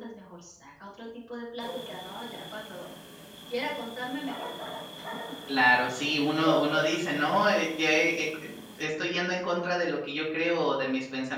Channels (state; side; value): identical; both; correlation 1.00